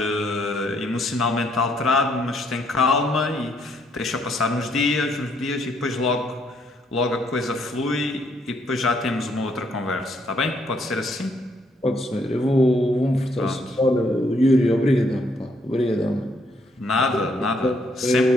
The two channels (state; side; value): normal; both; correlation 0.70